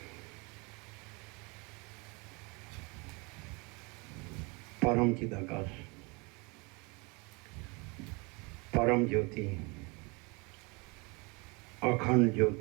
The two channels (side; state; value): left; quieter; 28.9 dB